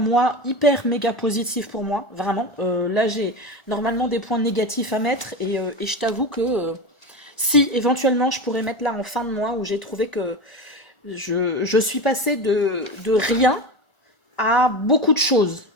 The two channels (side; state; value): right; late; 1.4 ms